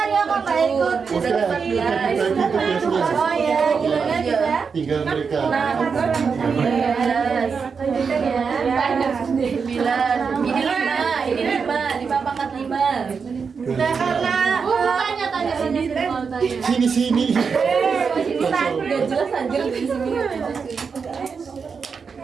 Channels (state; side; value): quieter; left; 5.7 dB